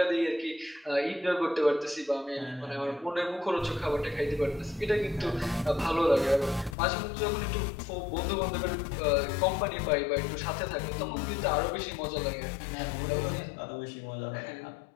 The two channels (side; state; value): right; drops out; at 6.8 s